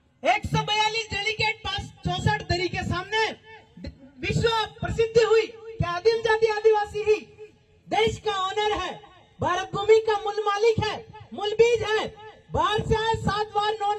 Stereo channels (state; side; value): identical; both; correlation 1.00